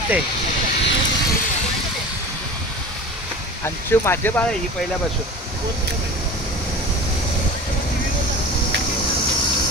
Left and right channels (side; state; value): both; normal; correlation 0.35